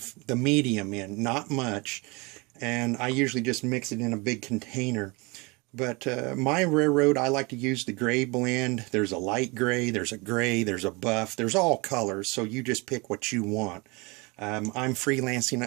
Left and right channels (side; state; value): left; quieter; 27.3 dB